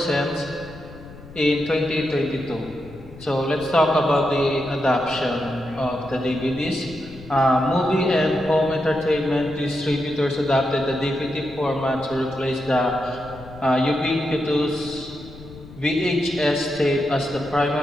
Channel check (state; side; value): noise; left; rumble, 18 dB below the sound